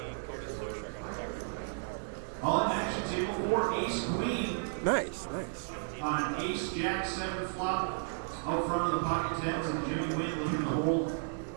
Cody Slusher, I got a text from him a half hour ago. He's still in as of a half hour going to main. Nice. With 1,500 left, 1,300 get paid. He's got a shot.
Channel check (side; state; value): left; silent; 55 dB below the other